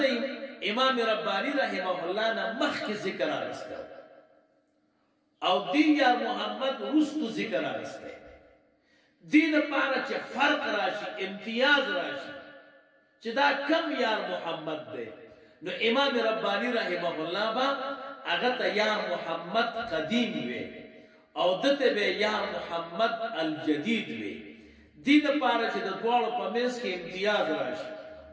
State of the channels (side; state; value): both; identical; correlation 1.00